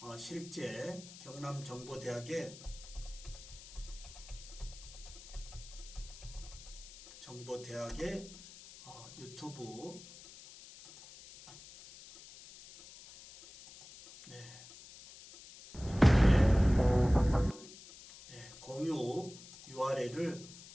실제 경남정보대학의 유튜브 공유 URL을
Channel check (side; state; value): left; noise; hiss, 17 dB below the sound